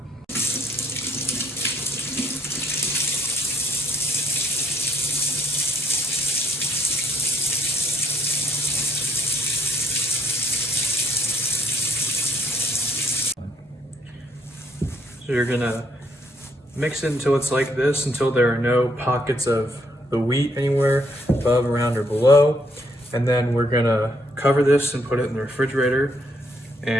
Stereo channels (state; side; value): normal; both; correlation 0.68